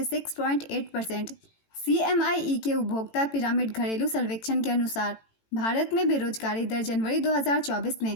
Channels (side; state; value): right; late; 18 ms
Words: 6.8%। CMIE के उपभोक्ता पिरामिड घरेलू सर्वेक्षण के अनुसार भारत में बेरोजगारी दर जनवरी 2024 में